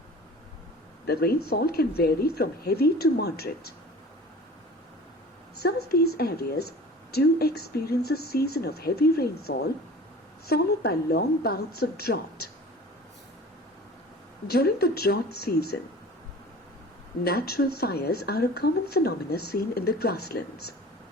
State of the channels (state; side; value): normal; both; correlation 0.41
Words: The rainfall can vary from heavy to moderate. Some of these areas do experience a season of heavy rainfall, followed by long bouts of drought. During the drought season, natural fires are a common phenomenon seen in the grasslands.